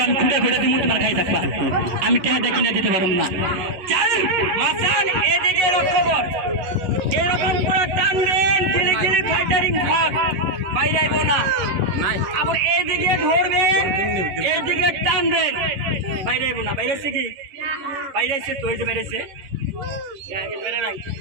আমি খুঁড়ে খুঁড়ে দিব তোমার খাই থাকবা আমি টেহা দেখি না দিতে পারব না চল মাসান এদিকে লক্ষ্য কর এরকম করে টানবেন গিলি গিলি ফাইটারিং ভাগ বাইরাইব না আবার এদিকে ধরবেন এদিকে টানবেন বাইরাইব না বাইরেছে কি বাইরাইছে তো এই যে বাইরেছে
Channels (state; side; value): late; left; 11 ms